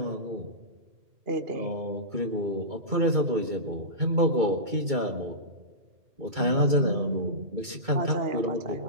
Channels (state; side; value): late; left; 2.2 ms